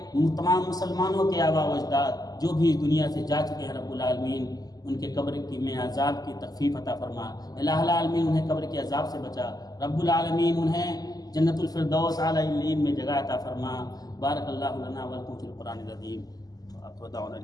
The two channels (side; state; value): right; late; 0.18 ms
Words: تمام مسلمانوں کے آبا و اجداد جو بھی دنیا سے جا چکے ہیں رب العالمین ان کے قبر کی میں عذاب کی تخفیف عطا فرما۔ الہ العالمین انہیں قبر کے عذاب سے بچا۔ رب العالمین انہیں جنت الفردوس اعلی علیین میں جگہ عطا فرما۔ بارک اللہ لنا ولکم فی القرآن العظیم۔ وآخر دعوانا